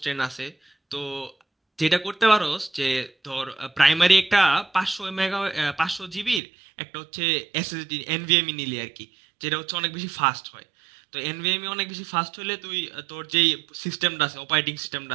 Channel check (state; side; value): drops out; left; at 6.4 s